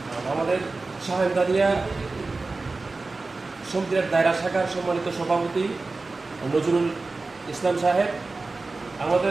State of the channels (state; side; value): quieter; left; 3.6 dB